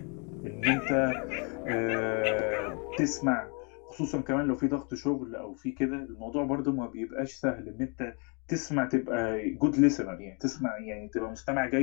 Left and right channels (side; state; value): right; quieter; 35.7 dB